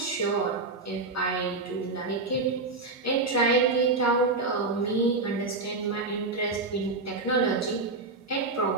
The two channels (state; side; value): quieter; left; 3.6 dB